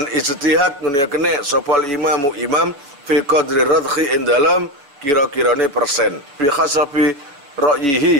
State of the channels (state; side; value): late; left; 7.1 ms